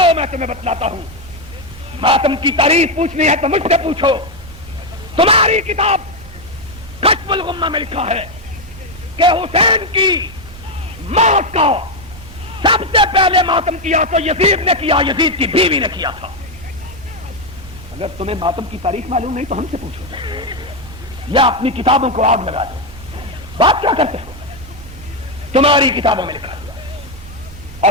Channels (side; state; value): both; normal; correlation 0.05